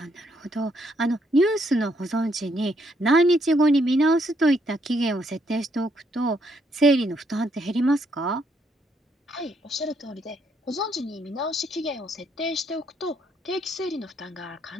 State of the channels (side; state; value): both; normal; correlation 0.73